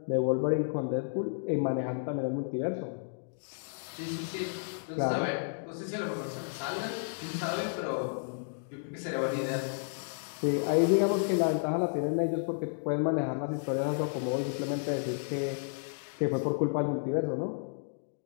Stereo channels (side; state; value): right; silent; digital silence